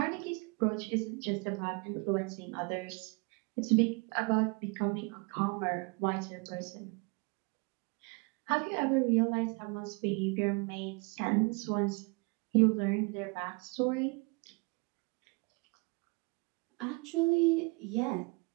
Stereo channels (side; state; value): left; quieter; 30.6 dB